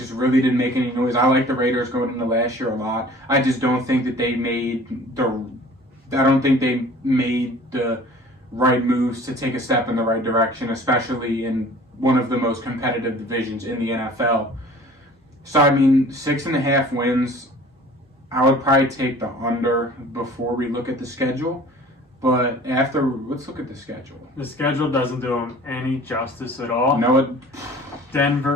really didn't make any noise. I like the Raiders going into last year a lot. I just don't think that they made the right moves to take a step in the right direction, especially in one of the most competitive divisions in the NFL. So, I mean, 6.5 wins, I would probably take the under before we look at the schedule. But let's look at the schedule. The schedule doesn't do them any justice at all. No,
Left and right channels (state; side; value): normal; both; correlation 0.47